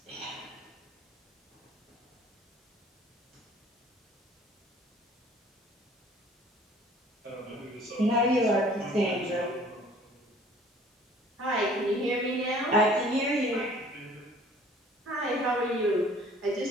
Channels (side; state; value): both; normal; correlation 0.53